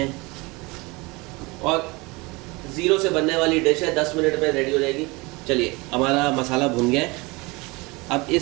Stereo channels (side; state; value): left; quieter; 25.0 dB